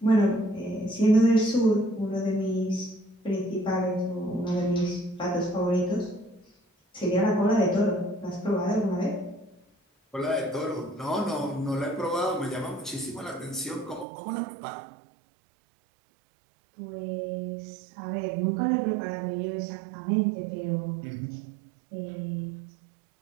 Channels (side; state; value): left; drops out; at 14.1 s